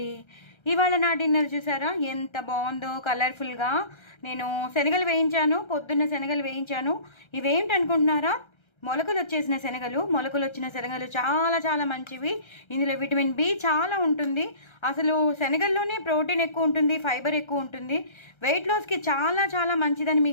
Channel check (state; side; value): late; right; 1.3 ms